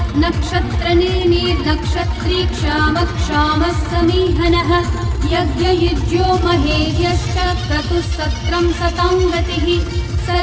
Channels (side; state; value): both; identical; correlation 1.00